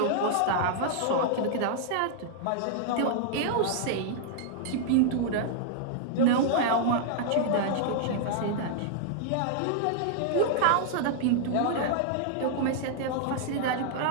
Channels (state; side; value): different; both; correlation -0.01